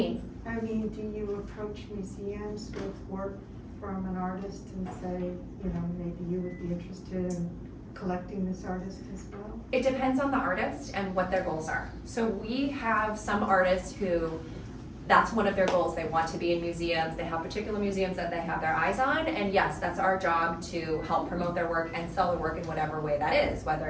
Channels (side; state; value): both; identical; correlation 1.00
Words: I mean, do you approach museums with work from an artist and say, you know, maybe you would be interested in collecting this artist as well? It depends on the artist and what their goals are. So we have some artists who, that's one of their goals. They want to be in museums. They have particular museums that they have their eyes on. And yes, that's our job to help promote their work and sell their work in whatever way that is, whether